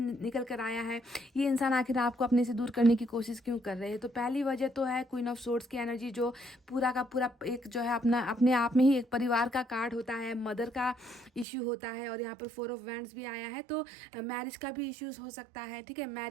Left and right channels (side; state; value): left; drops out; at 11.5 s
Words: कर आया है। ये इंसान आखिर आपको अपने से दूर करने की कोशिश क्यों कर रहे हैं? तो पहली वजह तो है क्वीन ऑफ सोर्ड्स की एनर्जी, जो पूरा का पूरा एक जो है अपने आप में ही एक परिवार का कार्ड होता है, मदर का इश्यू होता है। और यहाँ पर 4 ऑफ वैंड्स भी आया है, तो मैरिज का भी इश्यूज हो सकता है। ठीक है,